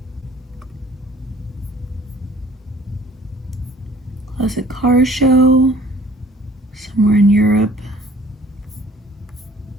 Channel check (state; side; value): normal; both; correlation 0.53